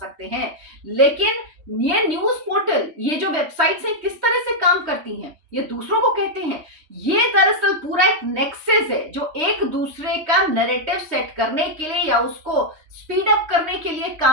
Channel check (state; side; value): late; left; 3.1 ms